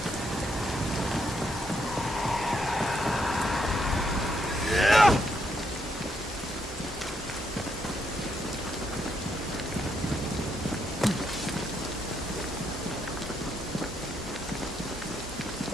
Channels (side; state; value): both; normal; correlation 0.77